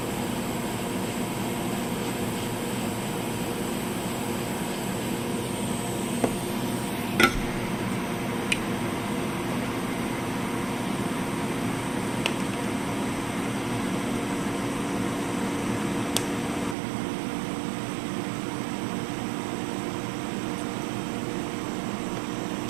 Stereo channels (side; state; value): left; drops out; at 16.8 s